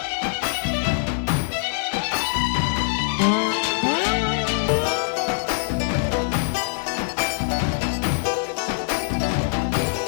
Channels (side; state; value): right; silent; digital silence